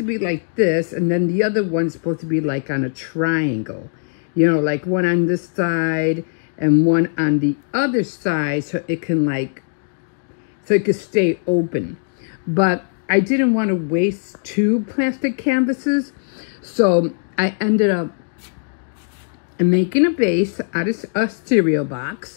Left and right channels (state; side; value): silent; right; 66 dB below the other